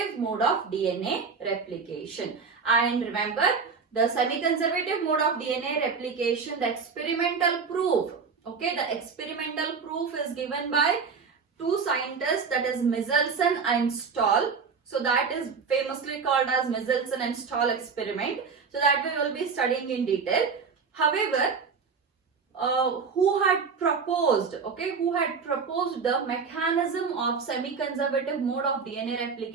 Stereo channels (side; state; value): left; quieter; 5.4 dB